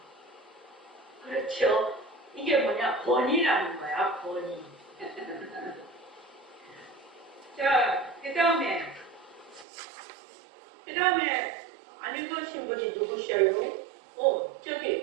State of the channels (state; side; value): drops out; left; at 9.7 s